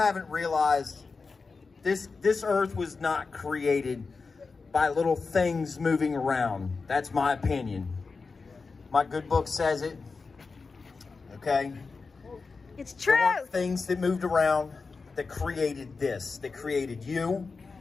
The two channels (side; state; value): right; quieter; 4.4 dB